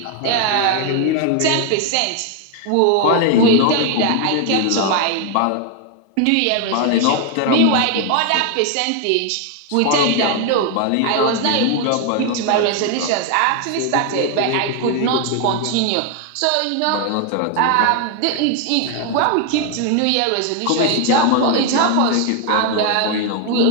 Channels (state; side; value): different; both; correlation 0.01